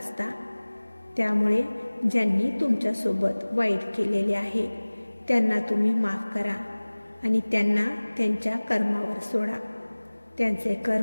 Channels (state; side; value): inverted; both; correlation -1.00